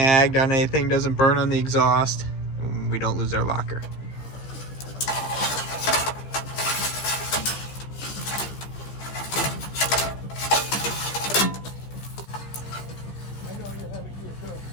on anything, doesn't burn on the exhaust, and we don't lose our locker.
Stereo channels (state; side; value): late; right; 15 ms